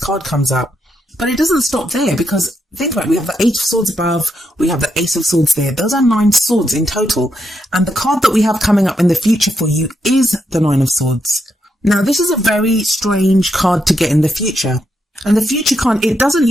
comes up. But it doesn't stop there, because think about it, we have the Eight of Swords above, we have the Ace of Swords there. Those are 9 swords in total. And the card that we have coming up in the future for you is the Nine of Swords. Now, this is a very strange card to get in the future. And the future card, it doesn't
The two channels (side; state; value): both; normal; correlation 0.80